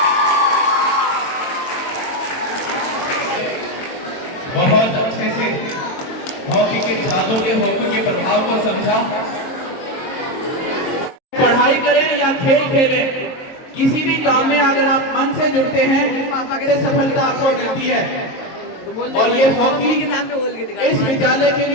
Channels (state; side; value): late; right; 22 ms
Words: बहुत अच्छे से हॉकी के जादू के, हॉकी के प्रभाव को समझा। पढ़ाई करें या खेल खेलें, किसी भी काम में अगर आप मन से जुड़ते हैं तो सफलता आपको मिलती है। और ये हॉकी इस विद्यालय के